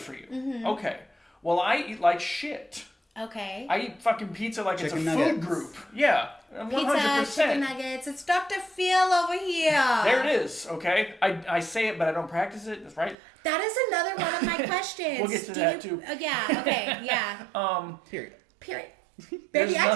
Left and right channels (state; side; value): drops out; left; at 13.2 s